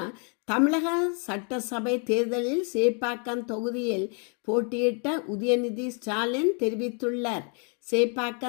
தமிழக சட்டசபை தேர்தலில் சேப்பாக்கம் தொகுதியில் போட்டியிட்ட உதயநிதி ஸ்டாலின் தெரிவித்துள்ளார்.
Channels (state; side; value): quieter; right; 39.4 dB